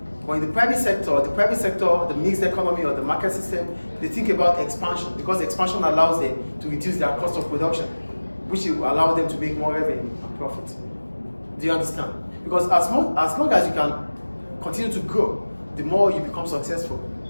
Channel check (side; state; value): both; inverted; correlation -1.00